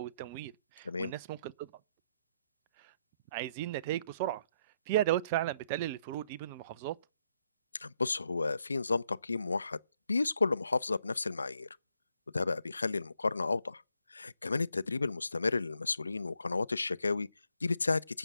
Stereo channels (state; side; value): inverted; both; correlation -0.75